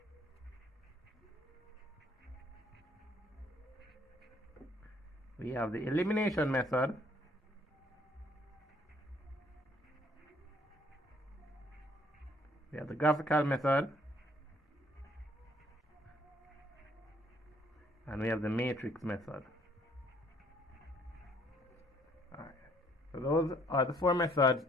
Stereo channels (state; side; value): normal; both; correlation 0.63